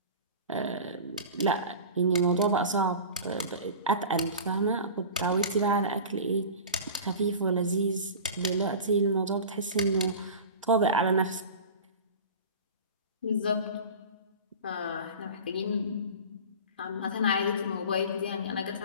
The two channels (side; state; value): both; inverted; correlation -0.34